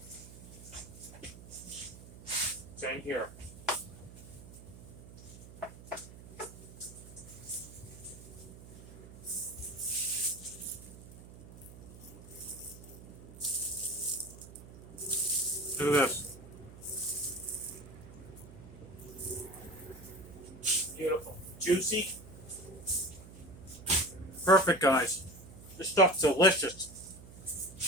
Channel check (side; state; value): right; noise; hum, 17 dB below the sound